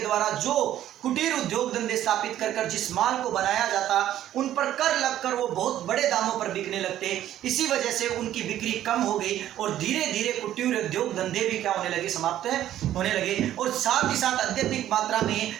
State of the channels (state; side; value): quieter; left; 12.2 dB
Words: द्वारा जो कुटीर उद्योग धंधे स्थापित कर जिस माल को बनाया जाता उन पर कर लगकर वो बहुत बड़े दामों पर बिकने लगते। इसी वजह से उनकी बिक्री कम हो गई और धीरे धीरे कुटीर उद्योग धंधे भी क्या होने लगे, समाप्त होने लगे। और साथ ही साथ अत्यधिक मात्रा में